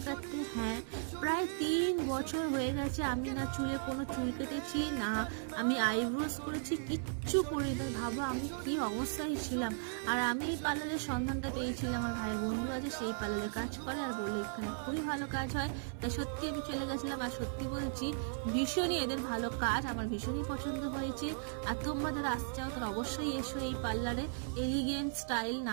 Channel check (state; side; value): silent; left; 54 dB below the other